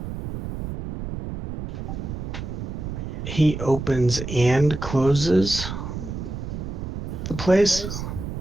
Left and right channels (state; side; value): noise; right; rumble, 6 dB below the sound